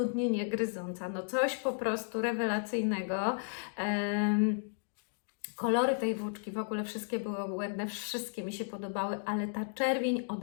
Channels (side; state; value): right; silent; digital silence